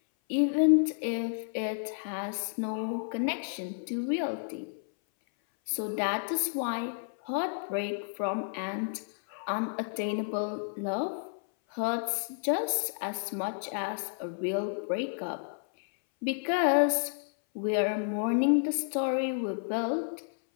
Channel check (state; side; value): silent; right; 57 dB below the other